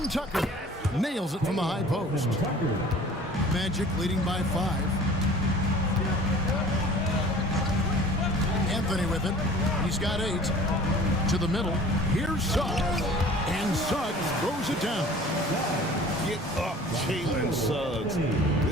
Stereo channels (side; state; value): both; normal; correlation 0.46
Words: Tucker. Nails it from the high post. Magic leading by 5. Anthony with it. He's got 8. To the middle. Here's Suggs. And Suggs throws it down. Get up, Jalen Suggs.